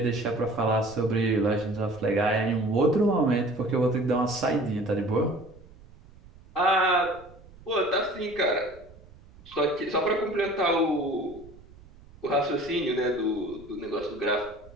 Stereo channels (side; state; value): right; noise; rumble, 23 dB below the sound